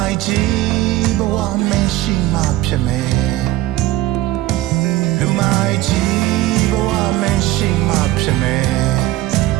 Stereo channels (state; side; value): quieter; left; 15.9 dB